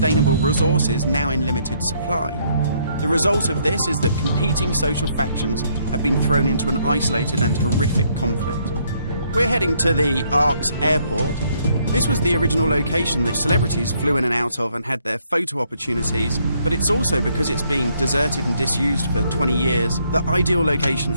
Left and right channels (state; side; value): inverted; both; correlation -0.70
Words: resources now in limited supply. The result of this is that competing social factions have been thrown into an isolated and horrific conflict. We're heading to the Ark's airport. This was the original location that celebrities flew in and out of and had their photo opportunities, but it's also, because it's being deserted and disused for 20 years, the ideal location